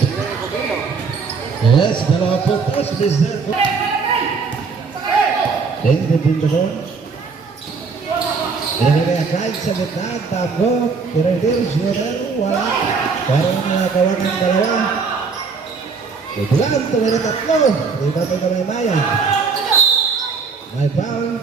Yes, 2 puntos. Mr. Dave, dipinda ko. Pinagagaya kahit sa gitna. Tango. Tiradir. Shooter. Wala. Parang nakawa ng dalawa. Bulan, tumira 3. Iba tayo may mayan. May foul.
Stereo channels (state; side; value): quieter; left; 5.0 dB